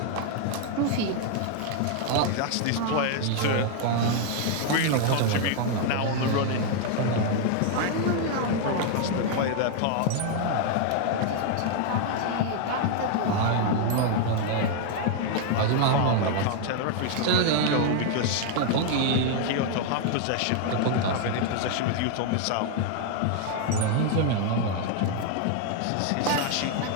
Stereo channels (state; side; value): different; both; correlation 0.00